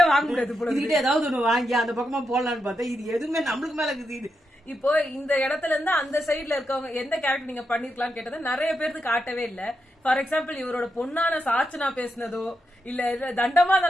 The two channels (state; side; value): normal; both; correlation 0.85